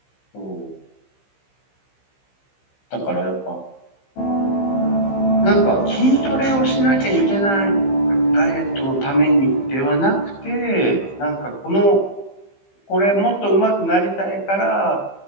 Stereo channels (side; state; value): right; late; 15 ms